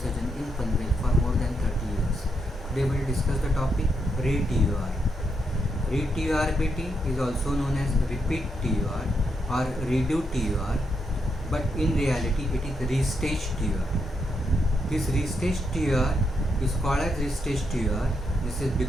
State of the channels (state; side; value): normal; both; correlation 0.80